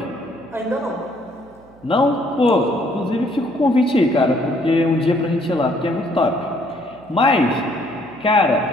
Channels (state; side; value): noise; right; hum, 27 dB below the sound